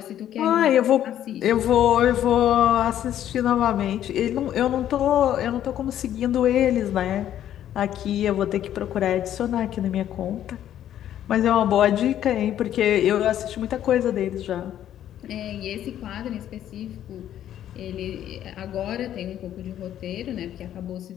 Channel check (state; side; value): quieter; right; 11.2 dB